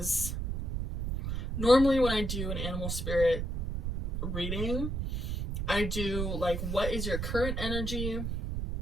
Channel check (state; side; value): noise; right; rumble, 2 dB below the sound